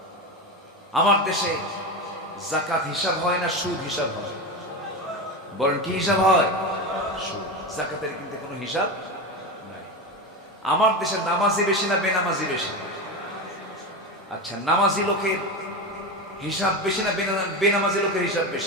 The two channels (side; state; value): both; normal; correlation 0.20